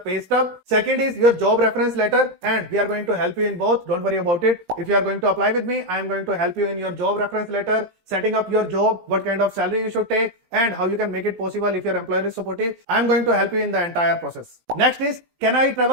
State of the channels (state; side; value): late; left; 17 ms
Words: pay stub. Second is your job reference letter, and we are going to help you in both. Don't worry about it. If you are going to apply with me, I am going to help you in your job reference letter, setting up your job, what kind of salary you should take, and how you can make it possible if your employer is supportive. I am going to help you in the entire process. Next is, can I